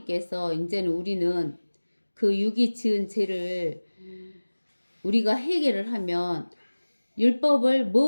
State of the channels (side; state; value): both; inverted; correlation -1.00